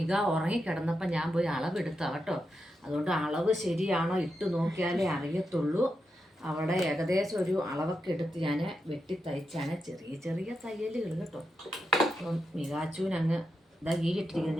ഉറങ്ങിക്കിടന്നപ്പോൾ ഞാൻ പോയി അളവെടുത്താ കേട്ടോ. അതുകൊണ്ട് അളവ് ശരിയാണോ ഇട്ട് നോക്കിയാലേ അറിയത്തുള്ളൂ. അവിടെ ഏകദേശം ഒരു അളവൊക്കെ എടുത്ത് ഞാൻ വെട്ടി തയ്ച്ചാണ്. ചെറിയ ചെറിയ തയ്യലുകൾ കേട്ടോ. അപ്പം മികാച്ചുവിനങ്ങ് ഇതാ ഇട്ടിരിക്കുന്ന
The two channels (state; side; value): normal; both; correlation 0.86